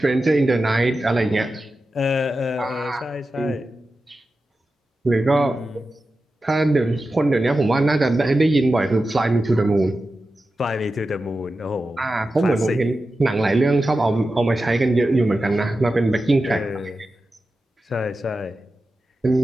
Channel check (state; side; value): normal; both; correlation 0.92